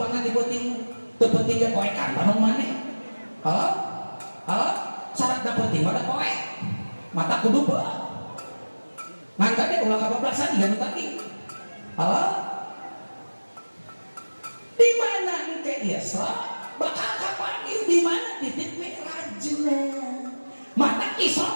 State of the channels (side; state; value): both; inverted; correlation -1.00